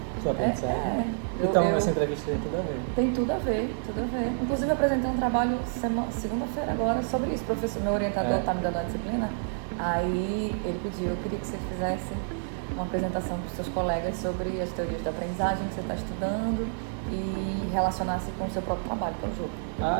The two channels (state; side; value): silent; left; digital silence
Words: Sobre aprendizagem? Então, essa entrevista tem tudo a ver. Tem tudo a ver, tudo a ver. Inclusive, eu apresentei um trabalho segunda-feira agora sobre isso. Meu orientador está me dando a disciplina, aí ele pediu, eu queria que você fizesse uma apresentação para os seus colegas sobre as teorias da aprendizagem que você está estudando e relacionasse com o seu próprio trabalho, que é o jogo.